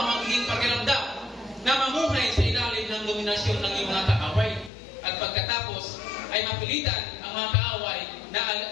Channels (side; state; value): right; drops out; at 4.7 s